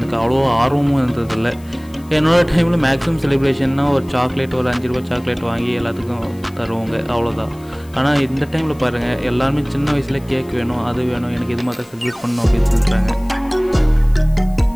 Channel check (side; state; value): left; noise; hiss, 26 dB below the sound